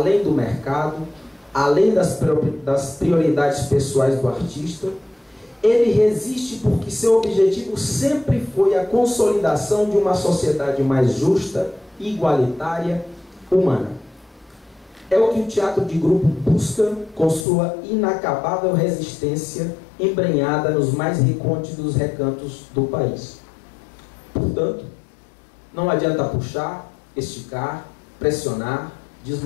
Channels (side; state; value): right; drops out; at 17.4 s